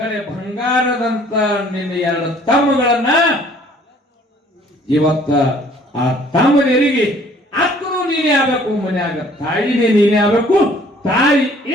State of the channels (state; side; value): normal; both; correlation 0.57